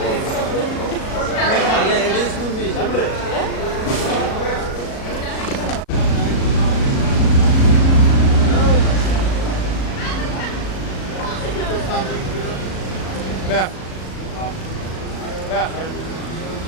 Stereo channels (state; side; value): late; right; 37 ms